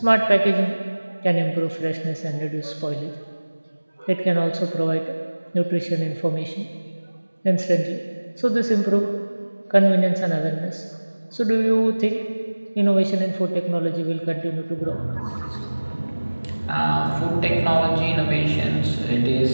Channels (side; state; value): both; inverted; correlation -1.00